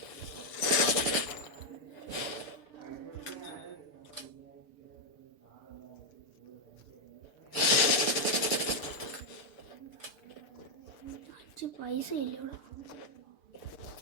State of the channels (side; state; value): right; late; 6.8 ms